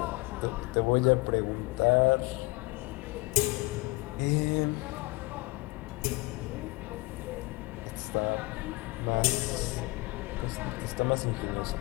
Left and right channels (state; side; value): quieter; right; 23.6 dB